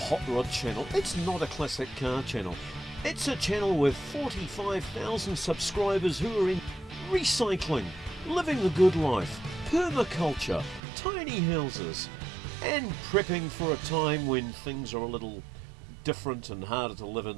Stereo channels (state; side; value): drops out; left; at 10.8 s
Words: rod channel, it's not a classic car channel. It's a channel with 45,000 subscribers who are in recycling, living the good life, permaculture, tiny houses, and prepping for a time when things are a little different and harder to live